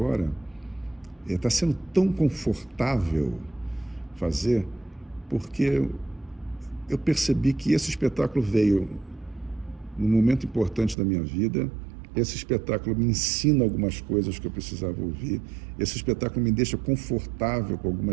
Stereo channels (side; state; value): left; drops out; at 11.0 s